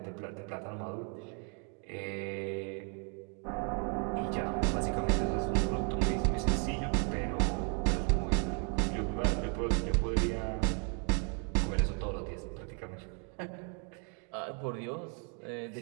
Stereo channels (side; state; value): left; quieter; 38.5 dB